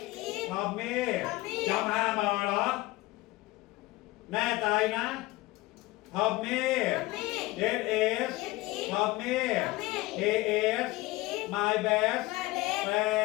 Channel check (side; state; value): right; quieter; 19.9 dB